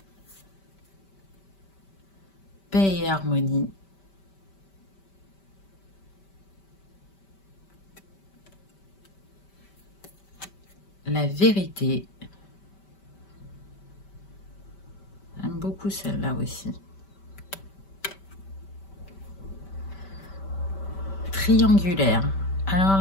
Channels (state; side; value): late; right; 5.1 ms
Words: Paix et harmonie. La vérité. J'aime beaucoup celle-là aussi. Triangulaire.